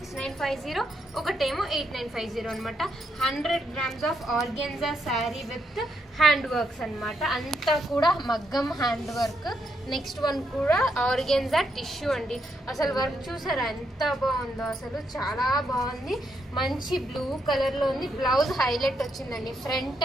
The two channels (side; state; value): both; normal; correlation 0.78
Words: ఒకటేమో 8950 అనమాట. 100 grams of organza sari with hand works అనమాట. అంతా కూడా మగ్గం హ్యాండ్ వర్క్. నెక్స్ట్ వన్ కూడా ఆర్గెన్జా టిష్యూ అండి. అసలు వర్క్ చూసారా ఎంత బాగుందో, అసలు చాలా బాగుంది. మంచి బ్లూ కలర్ లో ఉంది. బ్లౌజ్ హైలైట్ వచ్చిందండి. ఫ్రంట్